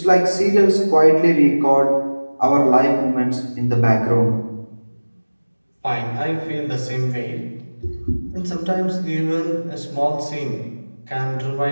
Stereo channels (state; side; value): inverted; both; correlation -1.00